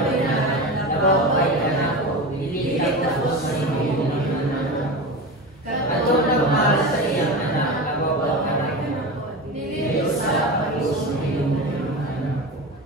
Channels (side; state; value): both; normal; correlation 0.25